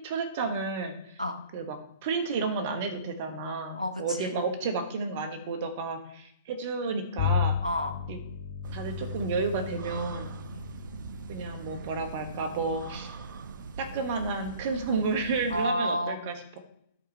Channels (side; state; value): both; inverted; correlation -0.46